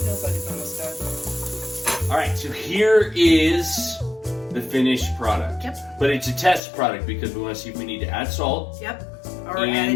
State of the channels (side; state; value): right; drops out; at 6.6 s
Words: like it's almost done. All right, so here is the finished product. Yep. But it's a test product because we want to see if we need to add salt. Yep. Or add